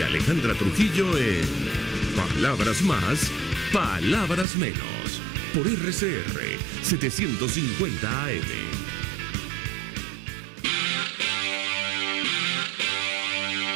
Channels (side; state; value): left; drops out; at 4.5 s